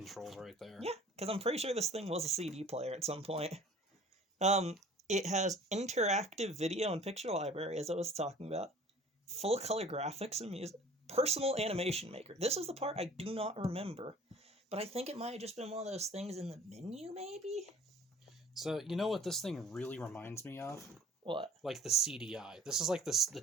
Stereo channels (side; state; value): both; normal; correlation 0.48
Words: right there. Yeah, because I'm pretty sure this thing was a CD player at some point. It has interactive video and picture library, as I was talking about. Full color graphics and music. Personal animation maker. This is the part I do not remember. But I think it might have just been one of those things in the menu, maybe? So, you know what this thing really reminds me of? What? Like the CDI. This is like the